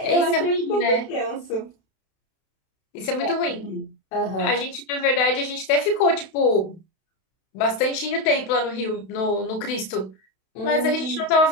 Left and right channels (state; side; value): late; right; 32 ms